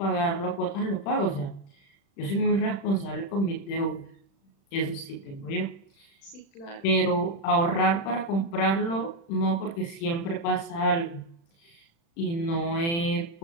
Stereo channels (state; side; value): late; right; 36 ms